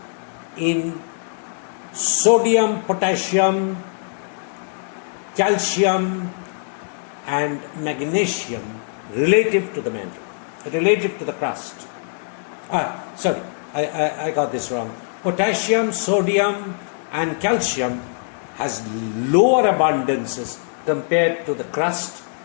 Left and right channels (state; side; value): silent; right; digital silence